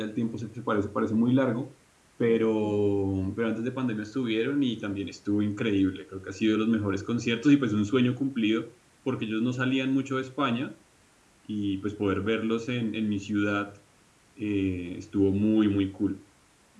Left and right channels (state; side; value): identical; both; correlation 1.00